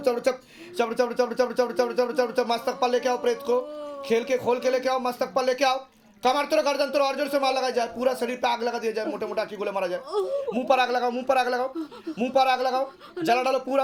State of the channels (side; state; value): both; identical; correlation 1.00